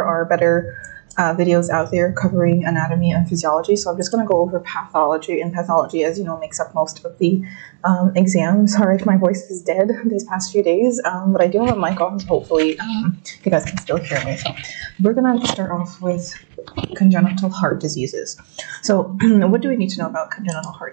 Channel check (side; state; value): left; silent; digital silence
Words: are better videos out there covering anatomy and physiology, so I'm just going to go over pathology, and pathology, as you know, makes up most of the exams. Sorry if my voice is dead these past few days, but I do have a mic on, so hopefully you guys can still hear me. So we're going to start off with congenital heart diseases. So what do we need to know about congenital